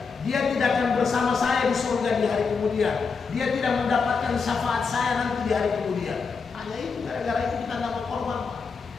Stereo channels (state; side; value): quieter; right; 5.1 dB